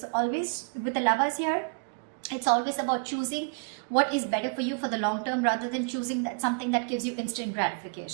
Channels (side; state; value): left; quieter; 38.0 dB